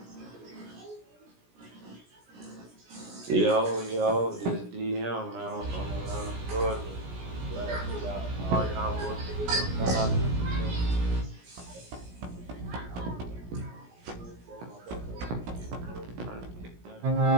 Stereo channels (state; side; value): late; left; 17 ms